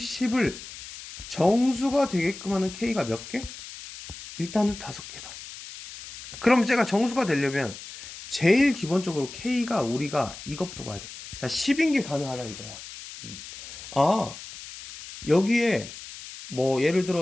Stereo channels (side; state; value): left; noise; hiss, 13 dB below the sound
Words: 정수가 되게끔 하는 K가 몇 개? 일단은 5개다. 그럼 제가 정수가 되려면 제일 기본적으로 K가 우리가 이것부터 봐야 돼. 자, 10인 게 가능하다 이거야. 아, 여기에 뭐 예를